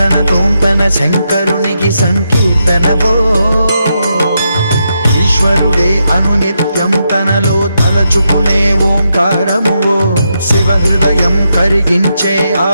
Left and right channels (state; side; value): inverted; both; correlation -0.83